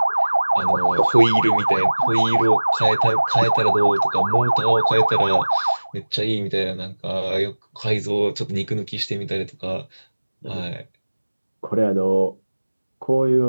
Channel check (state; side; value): inverted; both; correlation -1.00